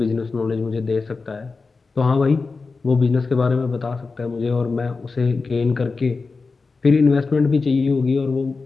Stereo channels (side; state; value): right; quieter; 4.2 dB